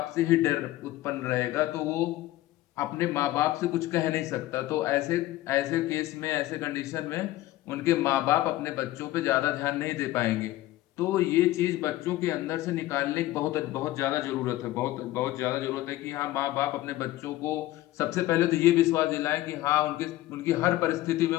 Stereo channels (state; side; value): quieter; right; 16.0 dB